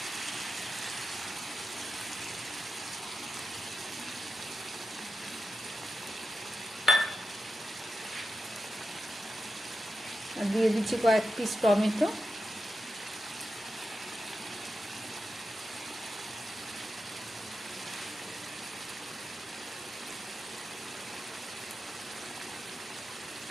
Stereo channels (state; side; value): normal; both; correlation 0.90